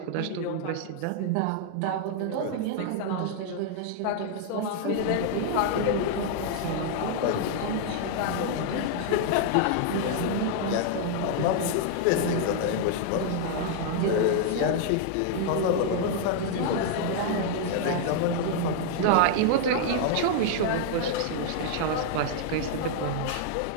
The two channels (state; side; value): different; both; correlation 0.00